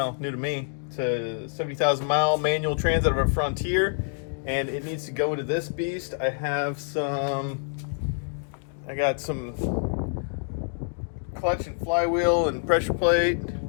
new to me. It's a 70,000 mile manual trans out of a Frontier, and it needs to go into this beast. I got some clutch and flywheel and pressure plate,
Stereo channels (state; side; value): silent; right; 59 dB below the other